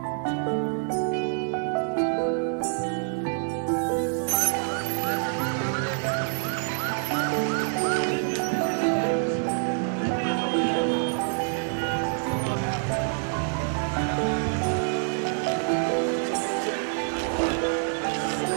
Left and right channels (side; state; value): left; silent; 61 dB below the other